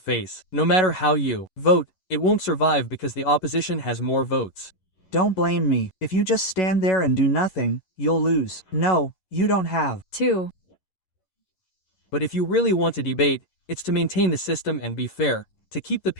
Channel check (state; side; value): late; right; 11 ms